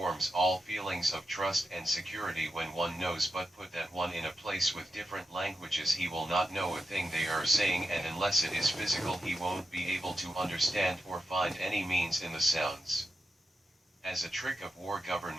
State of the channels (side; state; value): both; normal; correlation 0.88